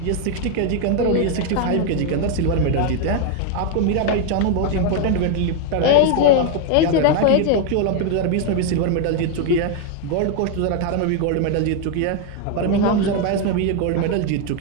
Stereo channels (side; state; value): both; different; correlation 0.01